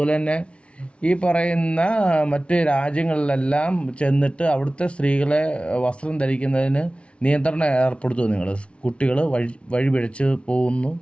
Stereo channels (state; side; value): late; right; 0.060 ms